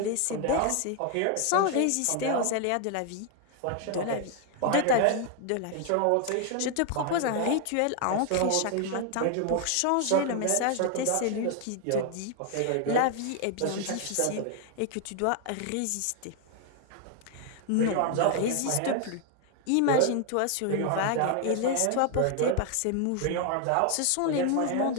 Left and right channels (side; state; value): both; different; correlation 0.00